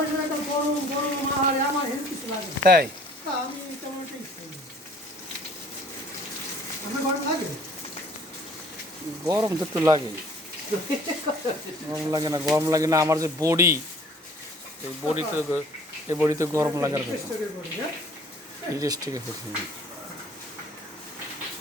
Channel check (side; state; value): both; normal; correlation 0.53